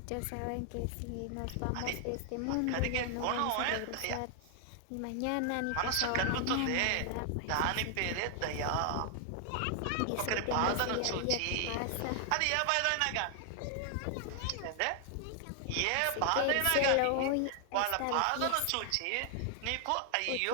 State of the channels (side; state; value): both; different; correlation 0.00